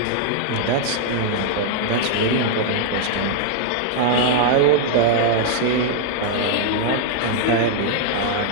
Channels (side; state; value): both; different; correlation -0.01